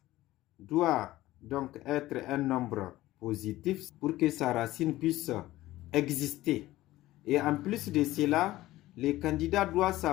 doit donc être un nombre positif pour que sa racine puisse exister. Et en plus de cela, les candidats doivent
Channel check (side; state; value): right; quieter; 16.5 dB